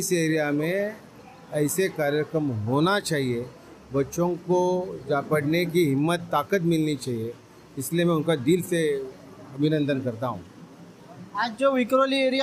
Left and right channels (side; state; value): both; identical; correlation 1.00